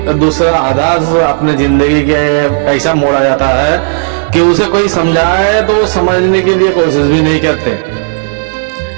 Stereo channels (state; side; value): silent; left; digital silence